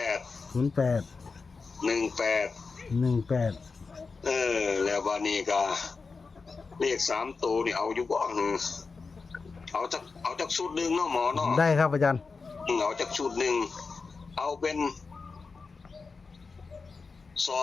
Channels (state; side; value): quieter; right; 4.5 dB